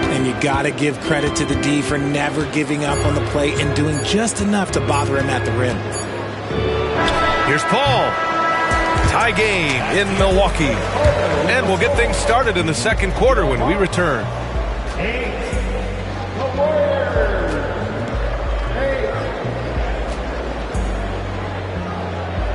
you got to give credit to the D for never giving up on the play and doing just enough to bother him at the rim. Here's Paul. Tie game in Milwaukee. And we'll get things started in the second quarter when we return.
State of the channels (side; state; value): both; identical; correlation 1.00